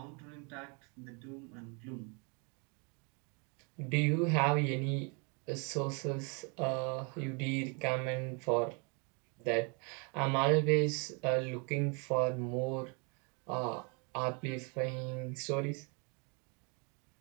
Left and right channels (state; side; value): quieter; left; 34.2 dB